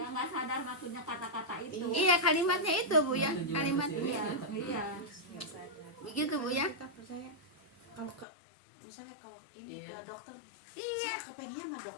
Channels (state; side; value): drops out; right; at 8.2 s